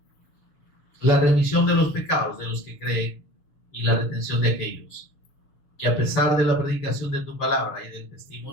la remisión de los pecados de los que creen y la retención de aquellos que, a pesar de la predicación de tu palabra y del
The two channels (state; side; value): late; right; 6.4 ms